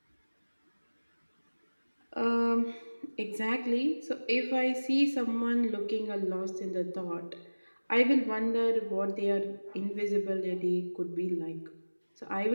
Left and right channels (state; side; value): inverted; both; correlation -1.00